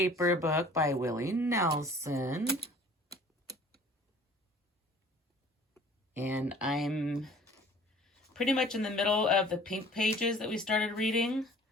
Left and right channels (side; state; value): both; normal; correlation 0.50